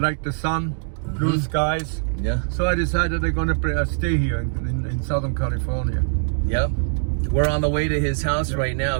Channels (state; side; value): silent; left; digital silence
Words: the sun, blue skies. Yeah. So I decided I'm gonna stay here in Southern California. Yep. We're on the way to his house right now.